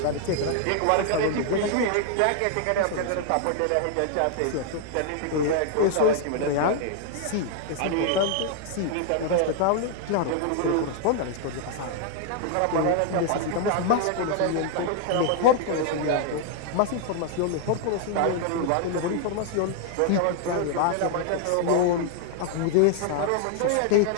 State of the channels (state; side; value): different; both; correlation 0.00